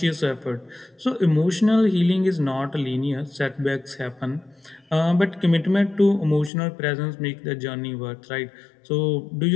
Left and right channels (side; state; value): right; drops out; at 6.5 s